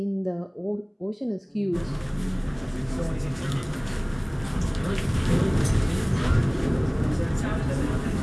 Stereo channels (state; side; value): identical; both; correlation 1.00